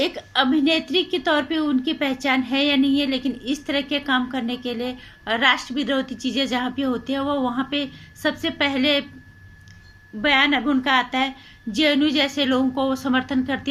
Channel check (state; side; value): identical; both; correlation 1.00